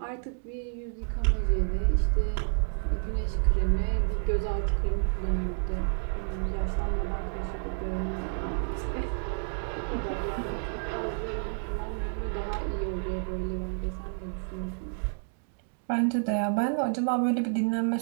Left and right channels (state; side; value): silent; left; 58 dB below the other